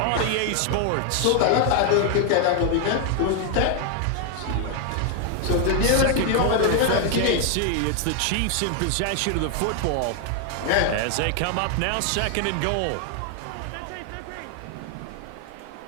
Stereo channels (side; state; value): both; different; correlation 0.00